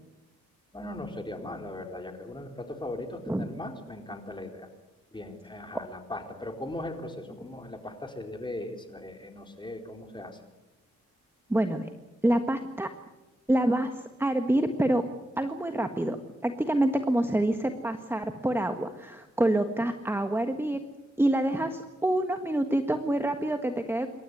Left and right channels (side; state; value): both; normal; correlation 0.87